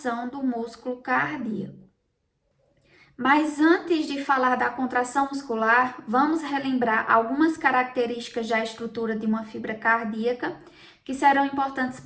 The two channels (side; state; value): both; identical; correlation 1.00